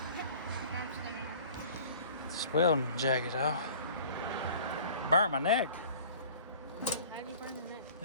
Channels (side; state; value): both; inverted; correlation -0.46